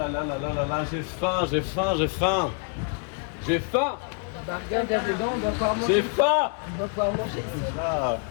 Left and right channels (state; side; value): quieter; right; 38.0 dB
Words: là là là là là, j'ai faim, j'ai faim, j'ai faim. J'ai faim. Bah regarde dedans, on doit pouvoir manger. J'ai faim. On doit pouvoir manger. Là,